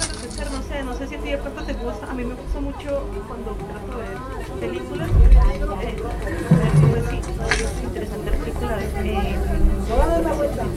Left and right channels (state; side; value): identical; both; correlation 1.00